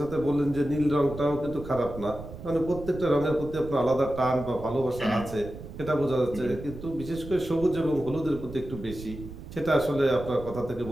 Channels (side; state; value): right; noise; rumble, 12 dB below the sound